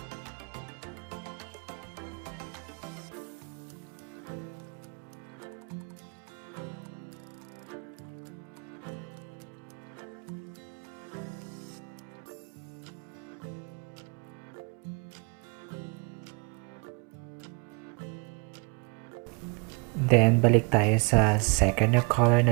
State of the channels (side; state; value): left; quieter; 33.2 dB